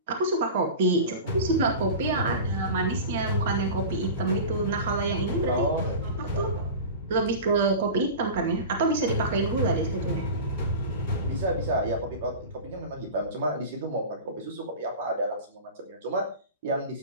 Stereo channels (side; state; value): both; inverted; correlation -0.31